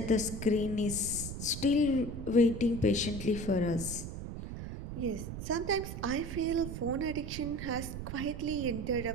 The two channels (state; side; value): noise; right; rumble, 7 dB below the sound